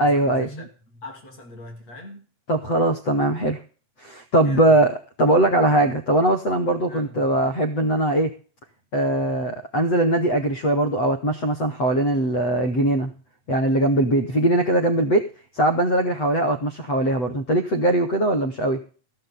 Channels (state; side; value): late; right; 8.0 ms